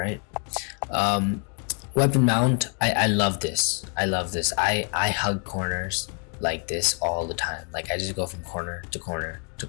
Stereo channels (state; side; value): quieter; right; 39.4 dB